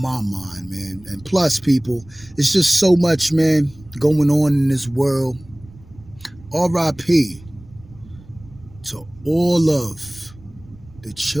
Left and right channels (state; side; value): noise; right; rumble, 23 dB below the sound